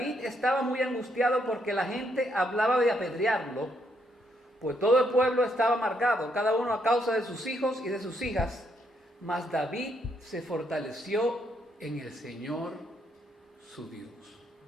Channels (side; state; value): both; normal; correlation 0.75